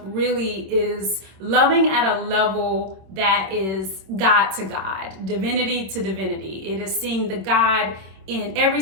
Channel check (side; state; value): left; late; 27 ms